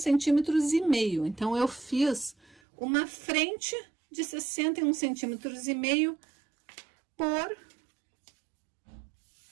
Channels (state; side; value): drops out; left; at 2.6 s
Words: Então, eu fiz uma frente de 61,5 centímetros por